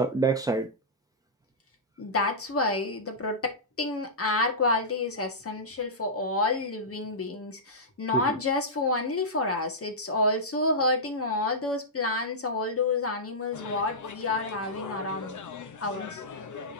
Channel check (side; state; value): both; normal; correlation -0.13